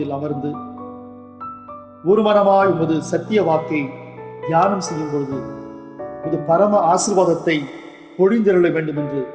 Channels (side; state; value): both; identical; correlation 1.00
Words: அமர்ந்து ஒரு மனமாய் உமது சத்திய வாக்கை தியானம் செய்யும் பொழுது உமது பரம ஆசீர்வாதத்தை பொழிந்தருள வேண்டும் என்று